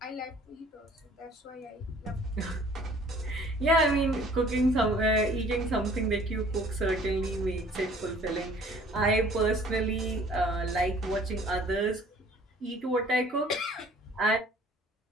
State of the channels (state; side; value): normal; both; correlation 0.54